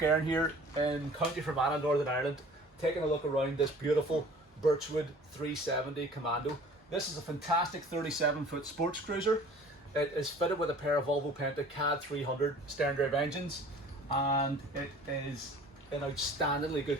Erin here in County Fermanagh, Northern Ireland, taking a look around this beautiful Birchwood 370 Commando. This is a fantastic 37-foot sports cruiser. It is fitted with a pair of Volvo Penta KAD300 Sterndrive engines, and it is in outstandingly good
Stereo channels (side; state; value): both; normal; correlation 0.48